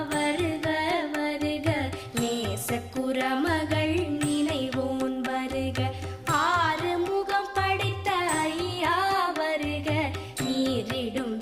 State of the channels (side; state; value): both; identical; correlation 1.00